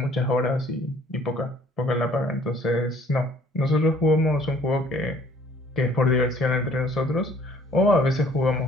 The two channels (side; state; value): both; normal; correlation 0.57